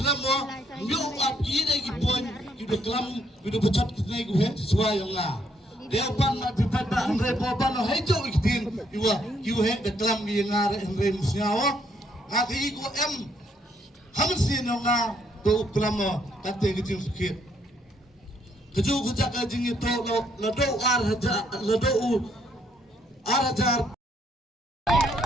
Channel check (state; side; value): normal; both; correlation 0.71